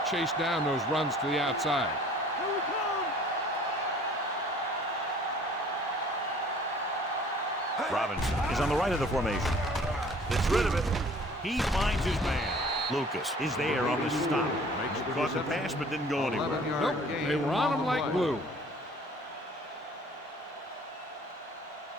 chase down those runs to the outside. Robinson is on the right of the formation. Gets rid of it. He finds his man. Lucas is there on the stop. Caught the pass but didn't go anywhere. Nope, they were on him like glue.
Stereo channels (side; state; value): both; normal; correlation 0.52